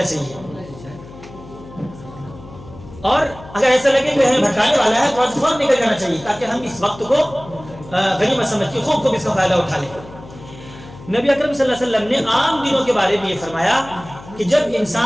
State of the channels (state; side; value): noise; left; hum, 18 dB below the sound